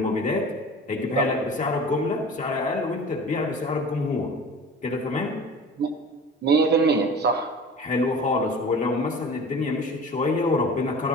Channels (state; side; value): normal; both; correlation 0.39